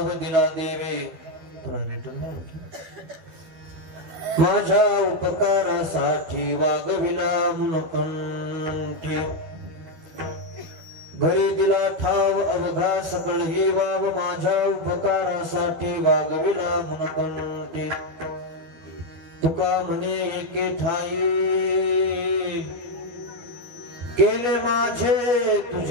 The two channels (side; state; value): left; late; 12 ms